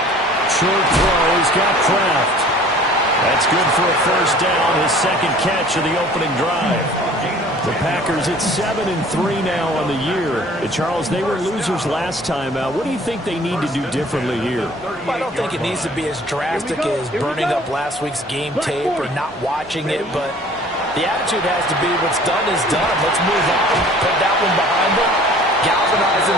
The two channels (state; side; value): normal; both; correlation 0.50